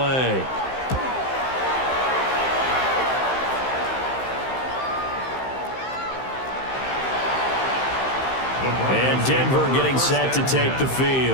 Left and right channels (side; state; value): right; late; 15 ms